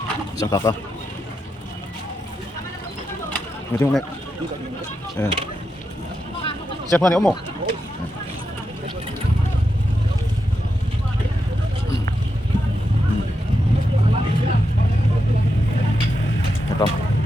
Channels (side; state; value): both; normal; correlation 0.86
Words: isang kaka. Ngerti mo nek? Siapa nih Omo? Ito.